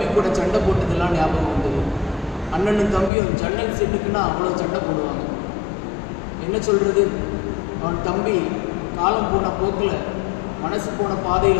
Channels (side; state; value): right; drops out; at 3.1 s